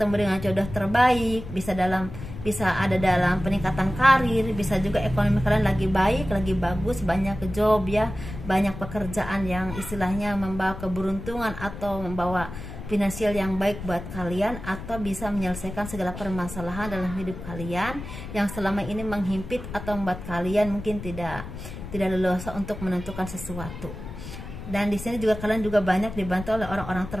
dengan jodoh terbaik, bisa ada dalam peningkatan karir, bisa juga ekonomi kalian lagi baik, lagi bagus, banyak job ya, banyak pekerjaan yang istilahnya membawa keberuntungan atau membawa finansial yang baik buat kalian, atau bisa menyelesaikan segala permasalahan dalam hidup kalian yang selama ini menghimpit atau membuat kalian mungkin tidak leluasa untuk menentukan sesuatu. Dan di sini juga kalian juga banyak dibantu oleh orang-orang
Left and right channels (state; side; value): noise; left; rumble, 10 dB below the sound